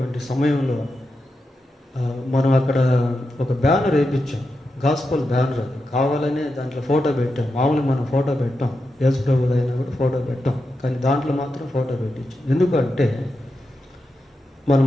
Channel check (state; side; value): normal; both; correlation 0.88